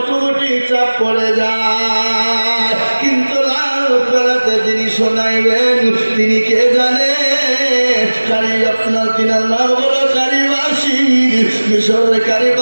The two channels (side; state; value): both; inverted; correlation -1.00